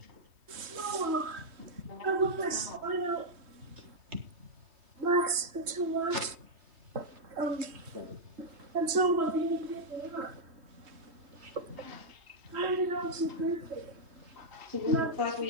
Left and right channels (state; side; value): late; left; 3.1 ms